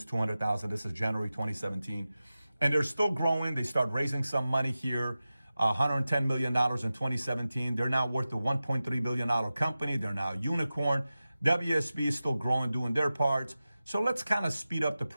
200,000. This is January 2017. And they're still growing. They start raising some money here. $110 million in 2017. They're now worth a $1.3 billion company. They're now a unicorn. WSP is still growing, doing their parts. So let's kind of speed up the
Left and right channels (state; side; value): inverted; both; correlation -0.94